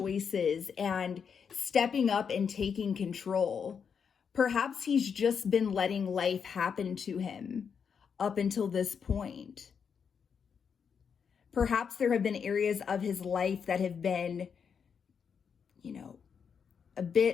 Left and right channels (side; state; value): right; quieter; 6.7 dB